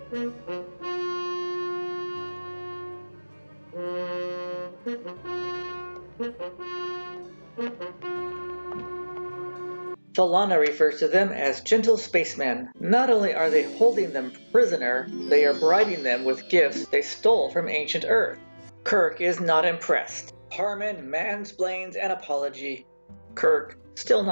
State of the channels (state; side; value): inverted; both; correlation -1.00